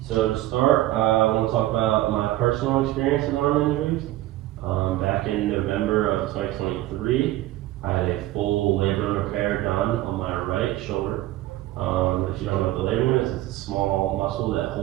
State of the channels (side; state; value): left; quieter; 15.7 dB